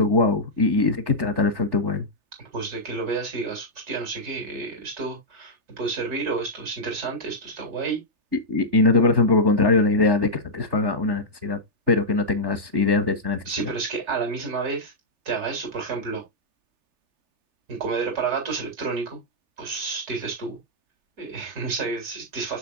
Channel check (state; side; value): late; left; 3.4 ms